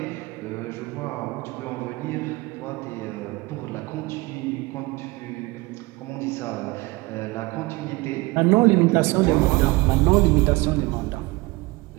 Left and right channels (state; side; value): quieter; left; 22.7 dB